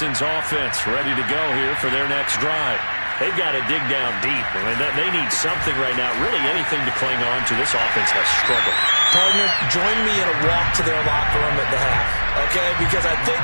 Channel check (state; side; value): inverted; both; correlation -1.00